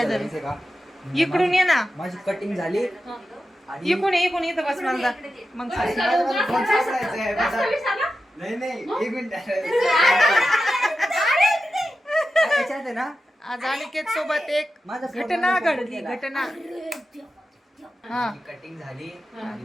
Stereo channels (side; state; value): both; normal; correlation 0.91